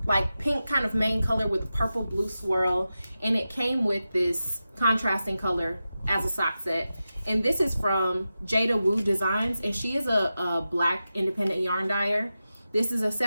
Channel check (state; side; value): inverted; both; correlation -0.92